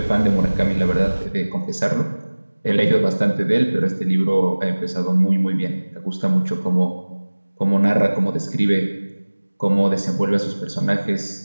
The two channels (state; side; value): inverted; both; correlation -1.00